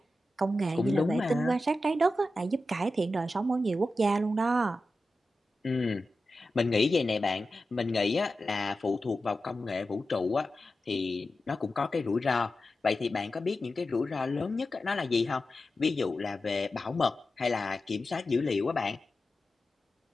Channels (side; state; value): both; normal; correlation 0.92